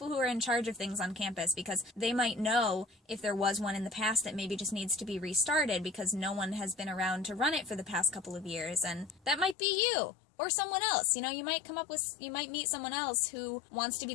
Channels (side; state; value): right; drops out; at 9.6 s